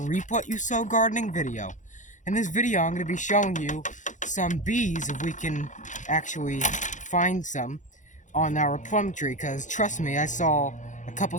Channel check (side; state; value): right; late; 0.36 ms